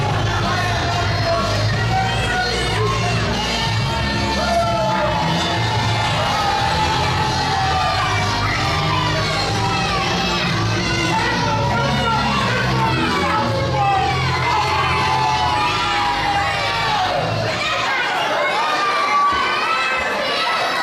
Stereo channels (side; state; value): both; identical; correlation 1.00